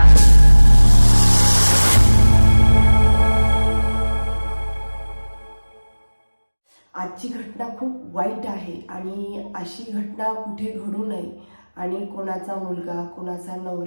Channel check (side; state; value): both; inverted; correlation -1.00